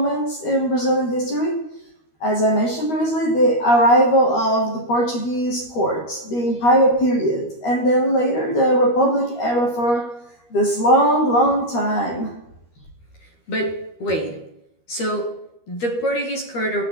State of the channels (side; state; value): right; late; 13 ms